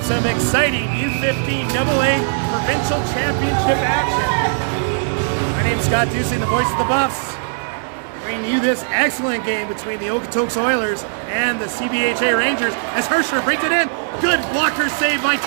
some exciting U15 AA Provincial Championship action. My name's Scott Dusing, the voice of the Buffs, bringing you this excellent game between the Okotoks Oilers and the CBHA Rangers as Hersher brings it in. Good blocker save by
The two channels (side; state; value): left; silent; digital silence